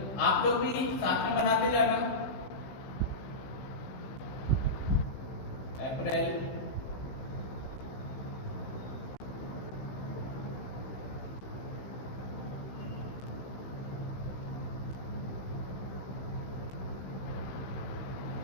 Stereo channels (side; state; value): right; late; 15 ms